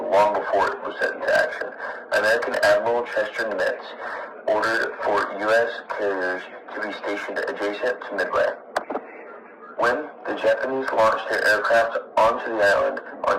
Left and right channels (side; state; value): both; identical; correlation 1.00